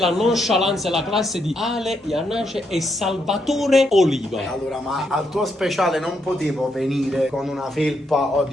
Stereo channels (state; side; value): normal; both; correlation 0.78